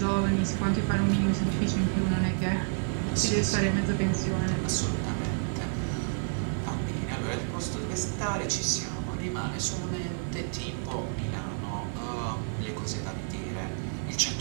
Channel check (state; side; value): silent; left; digital silence